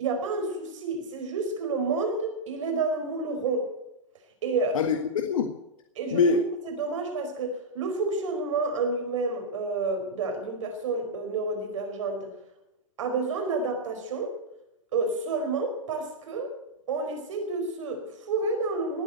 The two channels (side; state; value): both; normal; correlation -0.07